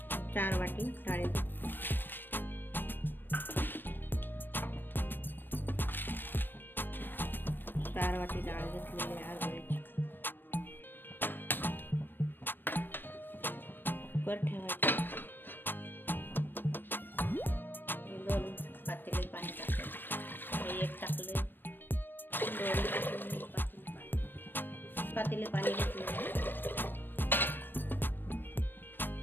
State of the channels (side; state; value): right; late; 0.094 ms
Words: 4 वाटी डाळ, 4 वाटी डाळ घेतलेली आहे हरभऱ्याची। कुकर ठेवायचं, 2 पातेले पाणी टाकायचं, 1 टाकले, 2 पातेले पाणी घेतले।